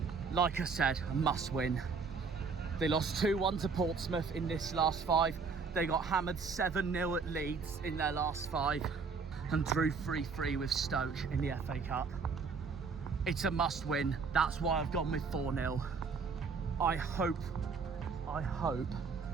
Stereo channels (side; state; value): left; quieter; 5.0 dB